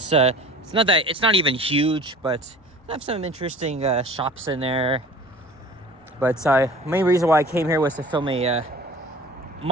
not even huge, but I have some interesting shops in there. But main reason why I came here was to film a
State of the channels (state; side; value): normal; both; correlation 0.42